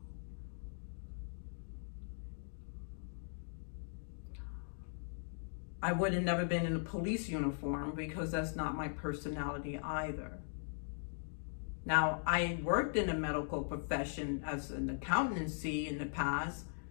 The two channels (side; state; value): right; silent; digital silence